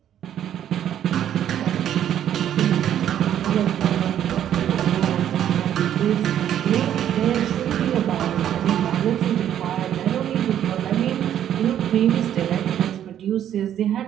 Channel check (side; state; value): left; quieter; 10.5 dB